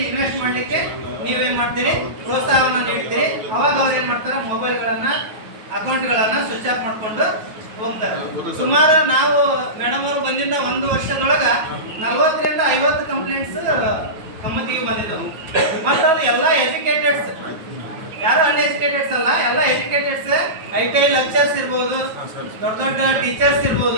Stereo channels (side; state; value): left; late; 9.2 ms